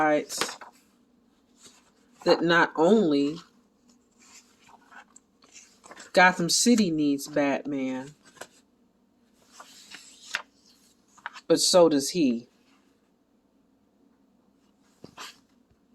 that not only Gotham City needs Batman, but so does he.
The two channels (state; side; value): identical; both; correlation 1.00